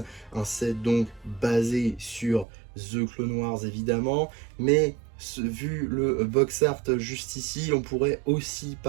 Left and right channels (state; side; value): drops out; left; at 2.5 s